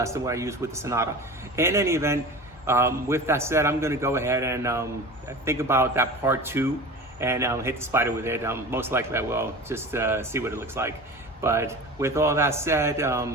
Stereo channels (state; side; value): normal; both; correlation 0.34